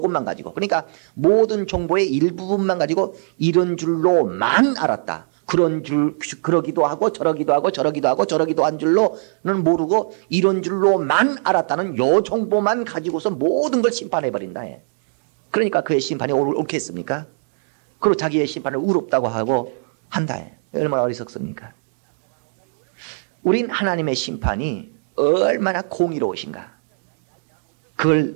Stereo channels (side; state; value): left; silent; digital silence